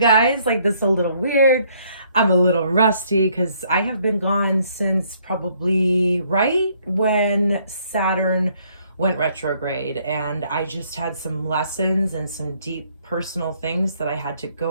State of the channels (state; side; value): inverted; both; correlation -0.67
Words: like this is a little weird. I'm a little rusty because I have been gone since probably right when Saturn went retrograde, and I just had some lessons and some deep personal things that I had to